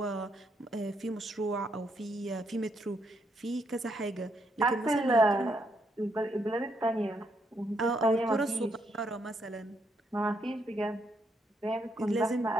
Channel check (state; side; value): normal; both; correlation 0.76